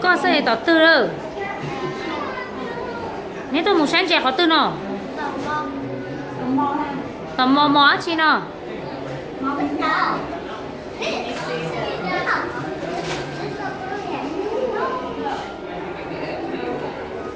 三到多了。你多木三节好多呢？到毛钱呢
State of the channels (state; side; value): identical; both; correlation 1.00